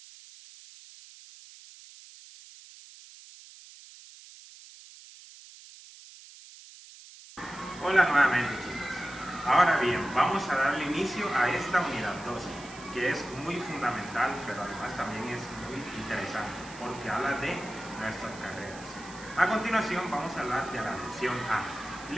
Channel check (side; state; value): right; noise; hiss, 18 dB below the sound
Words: Hola nuevamente, chicos. Ahora bien, vamos a darle inicio a esta unidad 12, que es muy fundamental, pero además también es muy interesante, porque habla de nuestras carreras. A continuación vamos a hablar de la lección A.